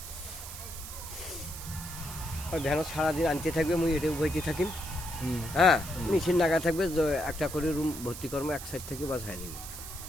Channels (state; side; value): noise; right; hiss, 11 dB below the sound